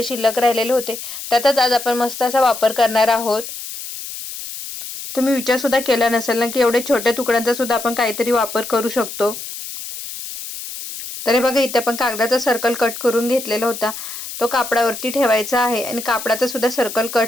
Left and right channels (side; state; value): left; noise; hiss, 10 dB below the sound